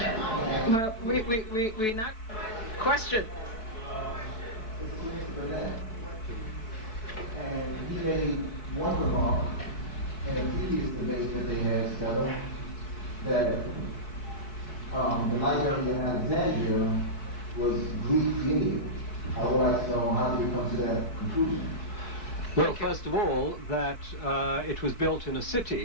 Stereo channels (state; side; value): late; right; 4.6 ms